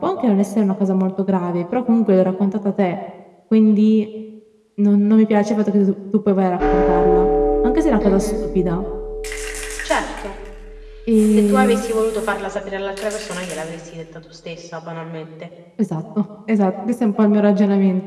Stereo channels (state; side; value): identical; both; correlation 1.00